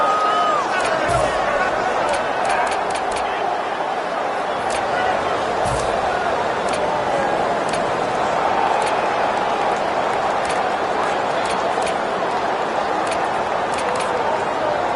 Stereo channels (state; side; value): identical; both; correlation 1.00